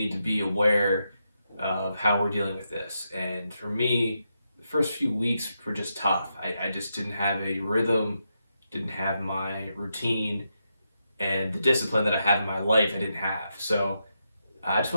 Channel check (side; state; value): both; inverted; correlation -0.84